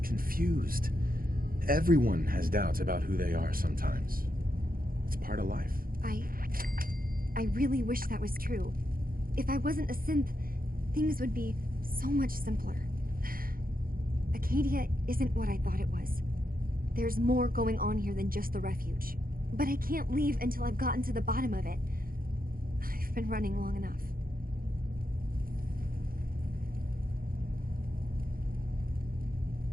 confused. Everyone has doubts about who they are sometimes. It's part of life. I really wish that was true. If I wasn't a synth, things would be so much simpler. Acadia isn't what I thought it was. There's more going on here than just the refuge. But I can't leave until I've gotten to the bottom of it. I've been running long enough.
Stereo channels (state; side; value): late; left; 0.42 ms